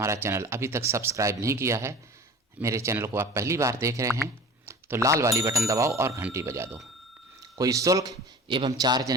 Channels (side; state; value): both; normal; correlation 0.40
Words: चैनल अभी तक सब्सक्राइब नहीं किया है, मेरे चैनल को आप पहली बार देख रहे हैं, तो लाल वाली बटन दबाओ और घंटी बजा दो। कोई शुल्क एवं चार्ज